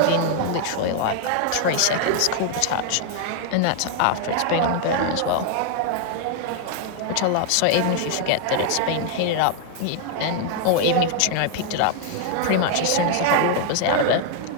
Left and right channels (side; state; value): both; different; correlation 0.00